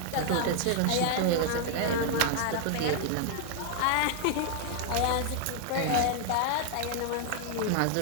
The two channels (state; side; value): different; both; correlation 0.00